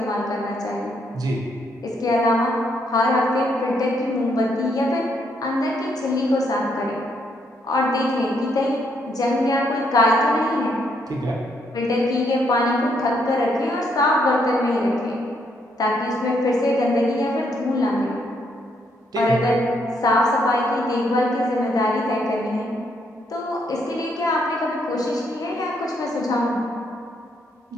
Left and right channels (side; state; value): both; normal; correlation 0.74